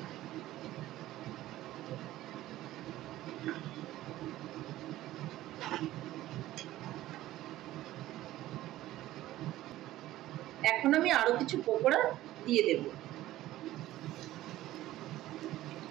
এখন আমি আরো কিছু পকোড়া দিয়ে দেব।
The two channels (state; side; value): quieter; left; 15.1 dB